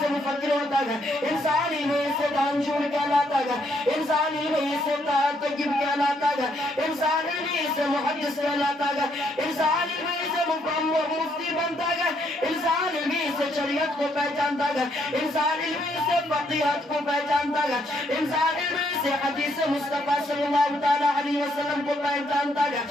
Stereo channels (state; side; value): normal; both; correlation 0.72